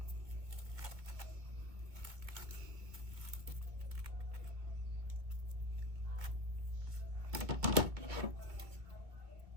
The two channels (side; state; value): left; late; 2.1 ms